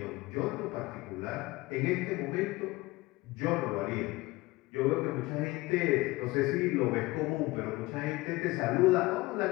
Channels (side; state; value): right; quieter; 21.0 dB